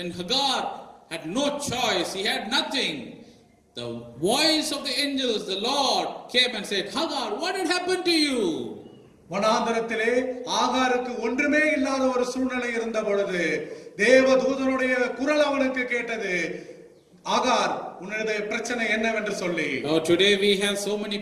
Hagar had no choice, he had nothing. The voice of the angels, the Lord came and said, Hagar, what had happened to you? வனாந்தரத்திலே ஆகாருக்கு ஒன்றுமே இல்லாத ஒரு சூழ்நிலை இருந்த பொழுது தேவதூதனுடைய குரல் அவனுக்கு கேட்டது, ஆகார், உன்னுடைய பிரச்சனை என்னவென்று சொல்லி. Today we have so many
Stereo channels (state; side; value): identical; both; correlation 1.00